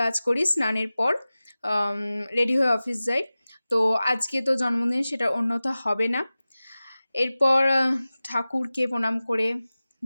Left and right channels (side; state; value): both; inverted; correlation -0.96